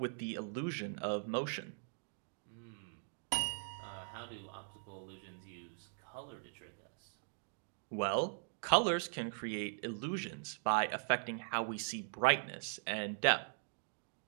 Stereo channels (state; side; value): silent; left; digital silence